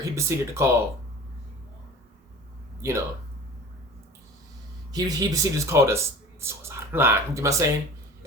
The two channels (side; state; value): both; normal; correlation 0.40